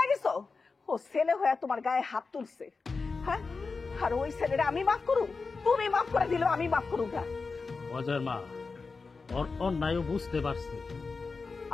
গেছো? ও ছেলে হয়ে তোমার গায়ে হাত তুলছে। হ্যাঁ, আর ওই ছেলেটা আমি মাফ করু? তুমি মাফ করে দিলেও আমি মাফ করু না। অজয়ের মা ওর অন্যায়ও বুঝতে পারছে।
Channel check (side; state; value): right; quieter; 4.4 dB